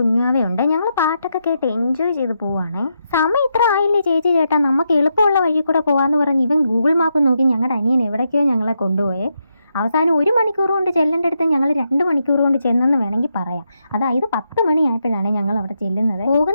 ഞങ്ങൾ പാട്ടൊക്കെ കേട്ട് എൻജോയ് ചെയ്ത് പോവാണേ. സമയം ഇത്ര ആയില്ലേ ചേച്ചി ചേട്ടാ, നമുക്ക് എളുപ്പമുള്ള വഴി കൂടെ പോവാന്ന് പറഞ്ഞ് ഇവൻ ഗൂഗിൾ മാപ്പ് നോക്കി ഞങ്ങളുടെ അനിയൻ എവിടേക്കോ ഞങ്ങളെ കൊണ്ടുപോയേ. അവസാനം 1 മണിക്കൂർ കൊണ്ട് ചെല്ലേണ്ടടുത്ത് ഞങ്ങൾ 2 മണിക്കൂർ കൊണ്ട് ചെന്നെന്ന് വേണമെങ്കിൽ പറയാം. അതായത് 10 മണിയായപ്പോഴാണ് ഞങ്ങൾ അവിടെ ചെല്ലുന്നത്.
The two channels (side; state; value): both; inverted; correlation -0.82